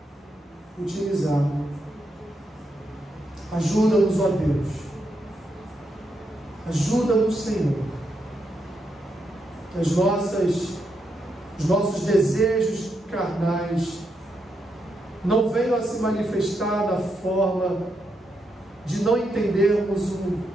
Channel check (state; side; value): normal; both; correlation 0.82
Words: utilizado. Ajuda-nos, ó Deus. Ajuda-nos, Senhor. Que os nossos desejos carnais não venham a se manifestar na forma de não entendermos